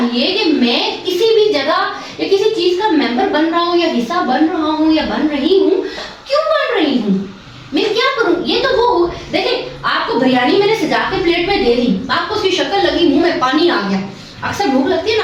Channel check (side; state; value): both; identical; correlation 1.00